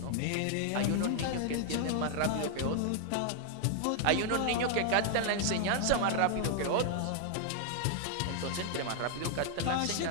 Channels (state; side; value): different; both; correlation 0.00